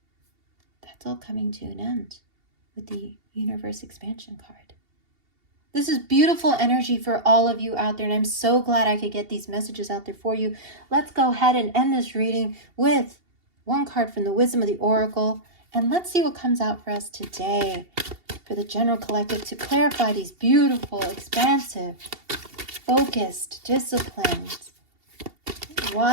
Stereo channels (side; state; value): left; late; 2.7 ms